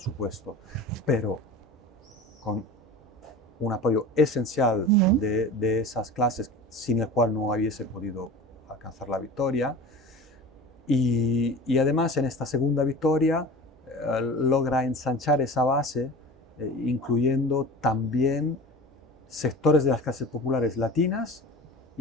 pero con un apoyo esencial de esas clases sin el cual no hubiese podido alcanzar la victoria. Y además en esta segunda victoria logra ensanchar esa base, incluyendo también sectores de las clases populares latinas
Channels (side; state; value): both; normal; correlation 0.36